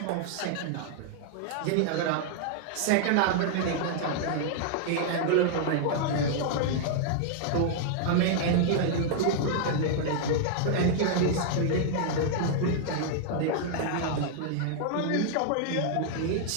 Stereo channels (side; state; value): both; different; correlation -0.01